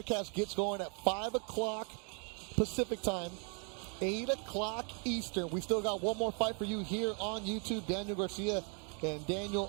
gets going at 5 o'clock Pacific time. 8 o'clock Eastern. We still got one more fight for you here on YouTube. Daniel Garcia and Daniel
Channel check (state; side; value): quieter; left; 39.7 dB